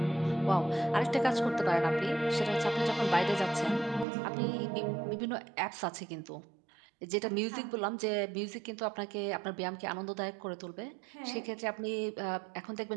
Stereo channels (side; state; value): left; drops out; at 4.0 s